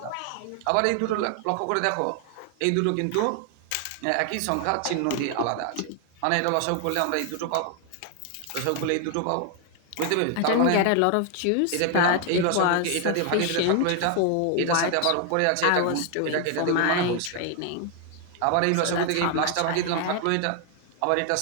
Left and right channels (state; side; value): different; both; correlation 0.00